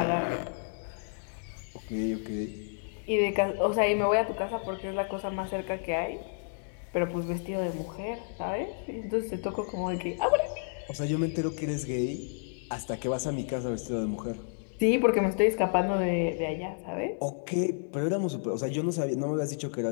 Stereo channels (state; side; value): silent; right; digital silence